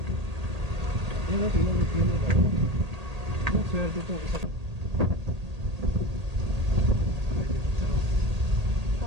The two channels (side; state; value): left; late; 1.8 ms